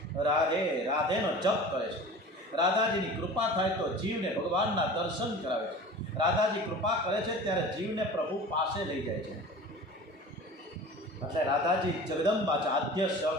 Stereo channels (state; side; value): normal; both; correlation 0.39